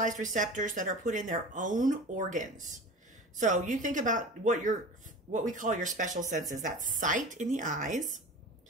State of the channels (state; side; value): normal; both; correlation 0.35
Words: receptors that are put in their own organs. So you think about what we call your special senses. That's sight in the eyes,